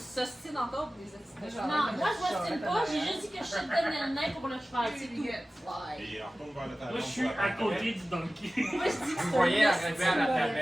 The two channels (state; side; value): normal; both; correlation 0.96